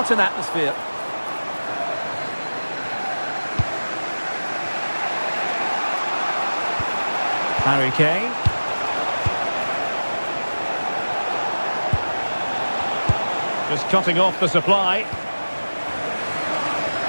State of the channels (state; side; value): inverted; both; correlation -1.00